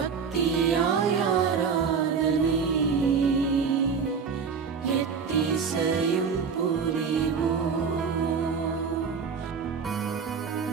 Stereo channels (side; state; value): left; quieter; 6.0 dB